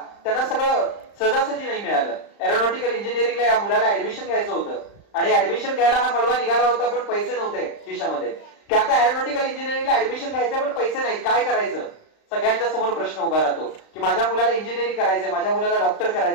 त्यांना सगळं सहजासहजी नाही मिळालं. एरोनॉटिकल इंजिनिअरिंगला या मुलाला ऍडमिशन घ्यायचं होतं आणि ऍडमिशन घ्यायला हा मलवा निघाला होता, पण पैसे नव्हते खिशामध्ये, की आता एरोनॉटिकल इंजिनिअरिंगला ऍडमिशन घ्यायचं पण पैसे नाही, काय करायचं. सगळ्यांच्या समोर प्रश्न उभा राहतो की माझ्या मुलाला इंजिनिअरिंग करायचंय, माझ्या मुलाला डॉक्टर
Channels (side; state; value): right; late; 35 ms